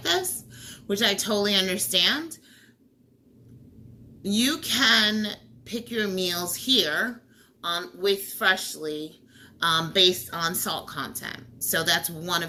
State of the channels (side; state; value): both; identical; correlation 1.00